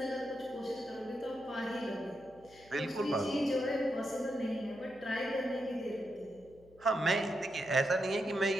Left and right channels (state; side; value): noise; left; hum, 25 dB below the sound